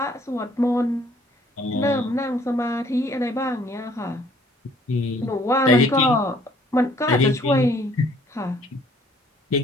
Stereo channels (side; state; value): both; normal; correlation 0.60